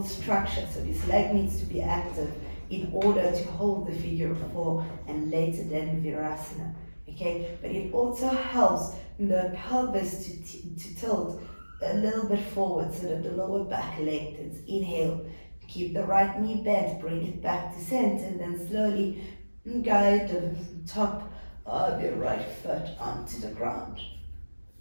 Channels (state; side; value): inverted; both; correlation -1.00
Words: structure. So this leg needs to be active in order to hold the figure of 4 and later then Virasana. Okay, but it also helps the pelvis to tilt a little bit forward so that the lower back lengthens. Inhale, keep the right knee bent, bring it back to center, and then slowly guide the top of your right foot onto the ground.